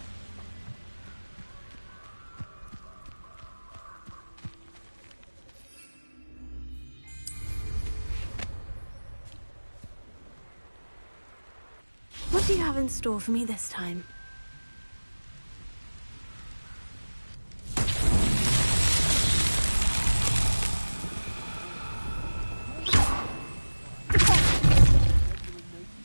What do you have in store for me this time?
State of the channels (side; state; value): both; inverted; correlation -1.00